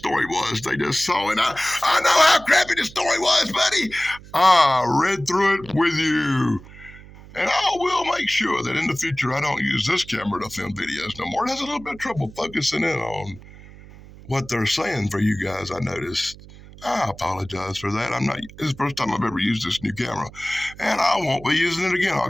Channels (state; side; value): noise; right; hum, 19 dB below the sound